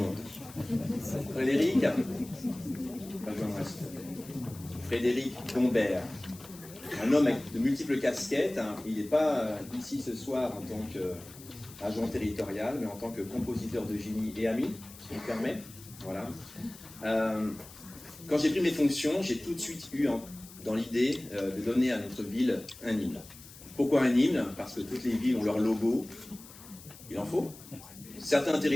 Frédéric, Frédéric Gombert, un homme avec de multiples casquettes, hein. Il n'est pas ici ce soir en tant qu'agent territorial, mais en tant que compositeur de génie et ami, si on me permet. Voilà. Quand j'ai pris mes fonctions, j'ai tout de suite eu dans l'idée de donner à notre ville un hymne. Pourquoi un hymne? Parce que toutes les villes ont leur logo. Il en faut. Certains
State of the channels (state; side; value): noise; left; hiss, 18 dB below the sound